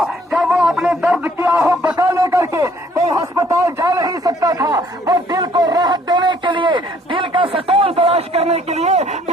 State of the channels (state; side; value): normal; both; correlation 0.61